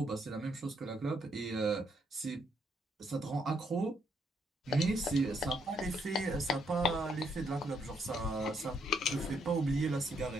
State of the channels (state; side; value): normal; both; correlation 0.74